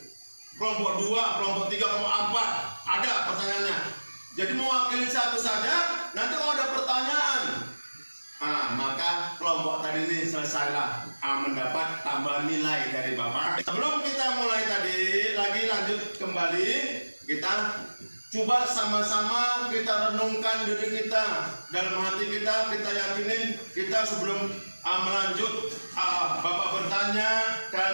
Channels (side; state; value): both; inverted; correlation -1.00